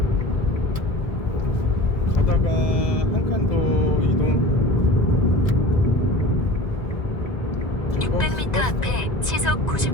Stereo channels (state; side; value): late; right; 1.9 ms